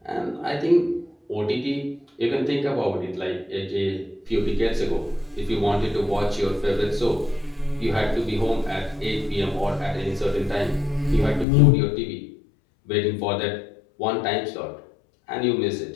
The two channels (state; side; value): drops out; right; at 11.5 s